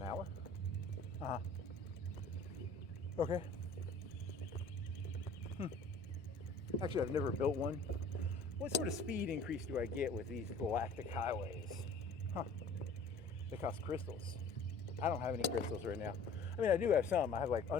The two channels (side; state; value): right; quieter; 3.3 dB